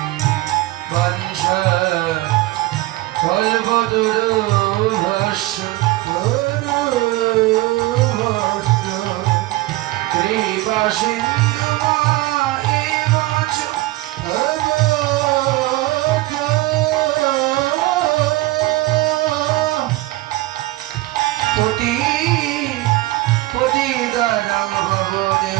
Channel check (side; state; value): left; quieter; 18.8 dB